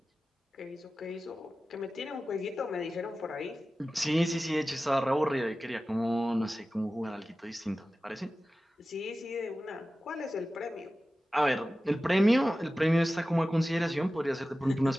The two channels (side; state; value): both; normal; correlation 0.95